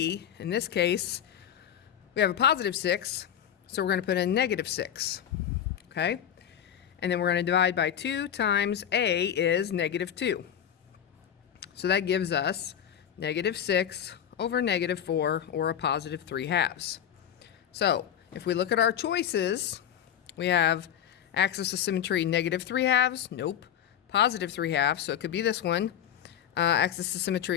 in this case, we have a positive 6, so we're going to put in negative 6. Okay? And then we're going to divide by 2 times a is negative 2. So that gives us negative 6 over negative 4, or a positive 3/2. So if we look at our choices, we have axis of symmetry negative 3/2, nope, positive 3/2, so it could be this one. Axis of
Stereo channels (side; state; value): right; quieter; 9.6 dB